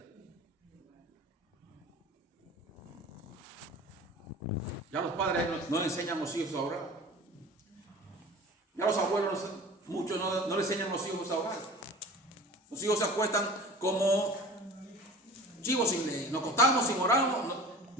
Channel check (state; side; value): normal; both; correlation 0.40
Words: Ya los padres no enseñan a los hijos a orar. Ya los abuelos, muchos no le enseñan a los hijos a orar. Los hijos se acuestan como chivos sin ley. Nos acostamos sin oramos,